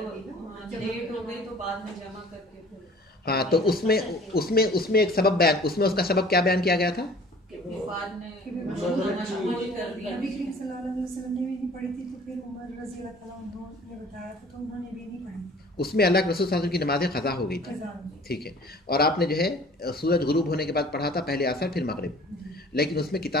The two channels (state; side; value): normal; both; correlation 0.49